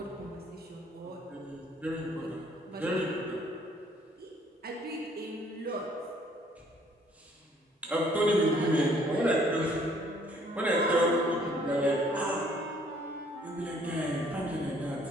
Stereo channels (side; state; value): both; normal; correlation 0.62